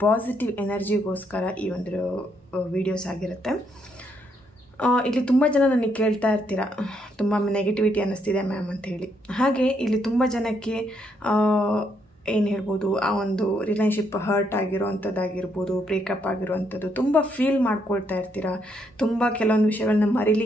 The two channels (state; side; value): normal; both; correlation 0.74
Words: ಪಾಸಿಟಿವ್ ಎನರ್ಜಿಗೋಸ್ಕರ ಈ ಒಂದು ವಿಡಿಯೋಸ್ ಆಗಿರುತ್ತೆ. ಇಲ್ಲಿ ತುಂಬ ಜನ ನನಗೆ ಕೇಳ್ತಾ ಇರ್ತೀರ, ತುಂಬ ನೆಗೆಟಿವಿಟಿ ಅನ್ನಿಸ್ತಿದೆ ಮ್ಯಾಮ್ ಅಂತ ಹೇಳಿ. ಹಾಗೆ ಇಲ್ಲಿ ತುಂಬ ಜನಕ್ಕೆ ಏನು ಹೇಳ್ಬೋದು, ಆ ಒಂದು ರಿಲೇಶನ್ಶಿಪ್ ಹರ್ಟ್ ಆಗಿರೋವಂಥದ್ದಾಗಿರ್ಬೋದು, ಬ್ರೇಕಪ್ ಆಗಿರೋವಂಥದ್ದು ತುಂಬ ಫೀಲ್ ಮಾಡ್ಕೊಳ್ತಾ ಇರ್ತೀರ, ತುಂಬ ಕೆಲವೊಂದು ವಿಷಯಗಳನ್ನ